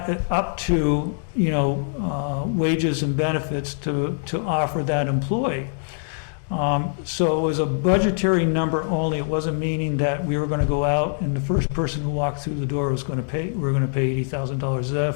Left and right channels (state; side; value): silent; right; digital silence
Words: up to, wages and benefits to offer that employee. So it was a budgetary number only. It wasn't meaning that we were going to go out and the first person who walked through the door was going to pay, we're going to pay $80,000. Is that a